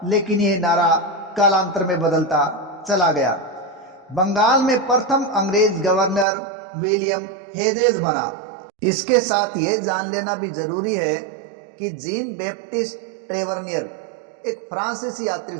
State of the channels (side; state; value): left; drops out; at 6.2 s